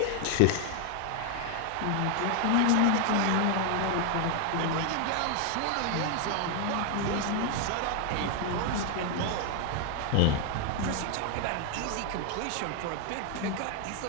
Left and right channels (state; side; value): different; both; correlation 0.01